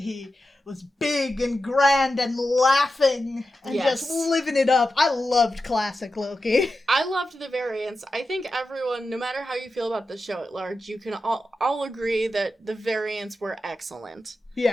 was big and grand and laughing and just living it up. I loved classic Loki. I loved the variants. I think everyone, no matter how you feel about the show at large, you can all agree that the variants were excellent.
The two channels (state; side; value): normal; both; correlation 0.91